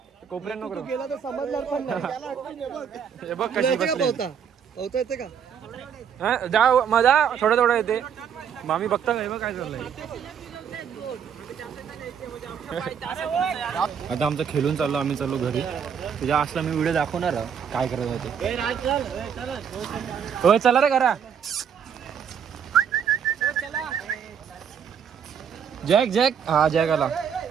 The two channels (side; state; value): left; quieter; 7.7 dB